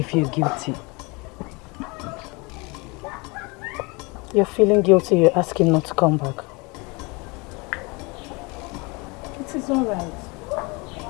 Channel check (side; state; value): right; quieter; 27.7 dB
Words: feel guilty. You're feeling guilty, you're asking not to come back. It is alright.